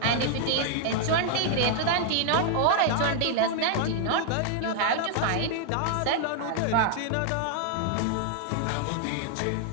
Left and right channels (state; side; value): different; both; correlation 0.00